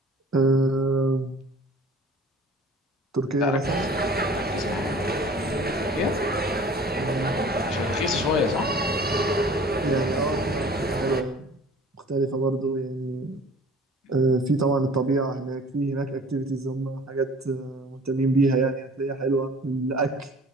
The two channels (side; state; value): both; normal; correlation 0.47